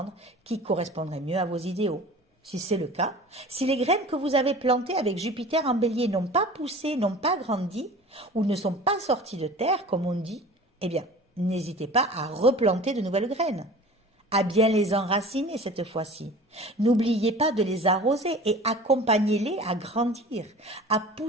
qui correspondraient mieux à vos idéaux. Si c'est le cas, si les graines que vous avez plantées avec Jupiter en Bélier n'ont pas poussé, n'ont pas grandi ou ne sont pas sorties de terre, comme on dit, eh bien, n'hésitez pas à replanter de nouvelles graines, à bien les enraciner cette fois-ci. N'oubliez pas de les arroser et accompagnez-les à grandir, à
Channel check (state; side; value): normal; both; correlation 0.41